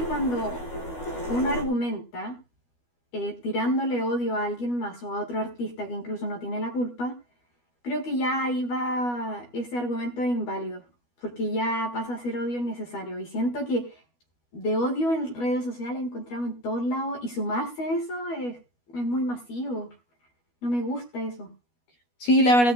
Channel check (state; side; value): late; right; 12 ms